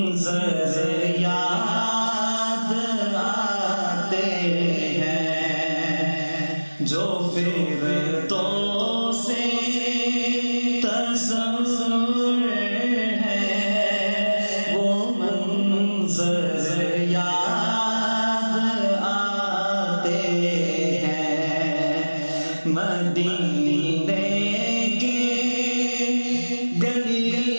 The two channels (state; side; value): inverted; both; correlation -1.00